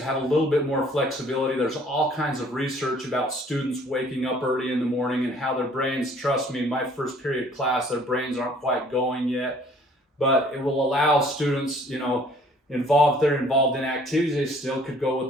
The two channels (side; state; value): both; normal; correlation 0.57